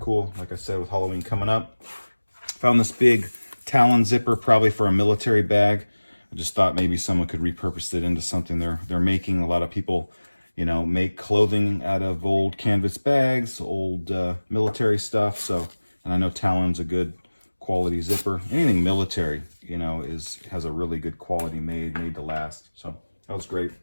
like I said, with Halloween coming up. Found this big Talon zipper, probably for a military bag. I just thought maybe someone could repurpose it into something they're making. A lot of people, you know, make clothing out of old canvas bags, old military stuff. So, and I know Talon's a good quality zipper. Anything military, you know, has a really good quality made to last. So that was great.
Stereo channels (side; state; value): both; inverted; correlation -1.00